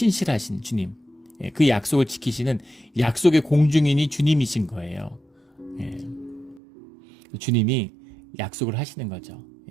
주님, 그 약속을 지키시는 약속의 공중인이 주님이신 거예요. 주님이 약속을 하시는 거죠.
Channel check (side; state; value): left; drops out; at 6.6 s